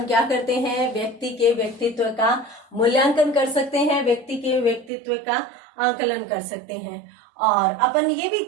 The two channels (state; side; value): drops out; left; at 4.9 s